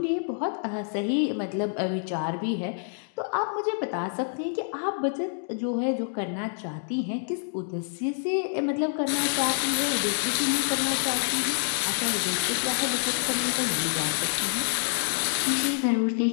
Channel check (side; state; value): right; silent; 59 dB below the other